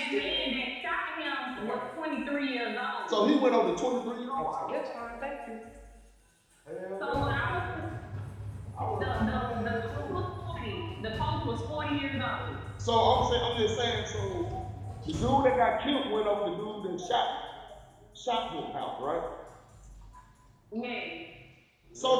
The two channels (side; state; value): both; identical; correlation 1.00